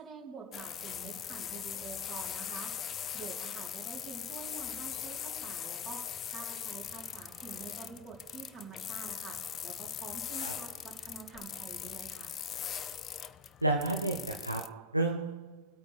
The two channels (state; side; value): normal; both; correlation -0.03